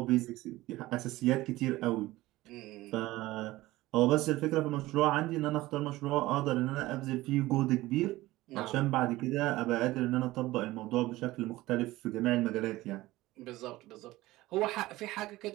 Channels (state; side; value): quieter; left; 18.0 dB